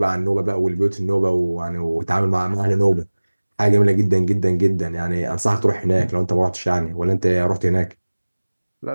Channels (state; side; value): inverted; both; correlation -1.00